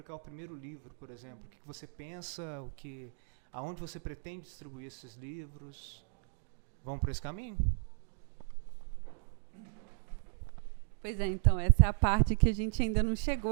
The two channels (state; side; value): silent; left; digital silence